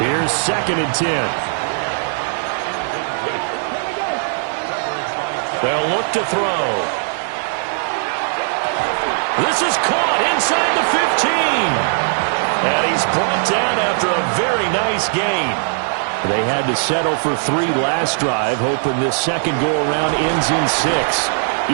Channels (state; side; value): silent; left; digital silence